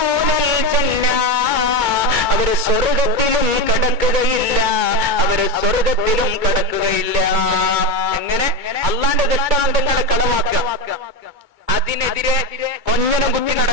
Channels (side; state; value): left; late; 2.2 ms